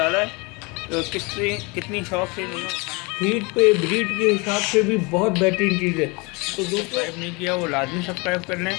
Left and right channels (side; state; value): right; quieter; 28.0 dB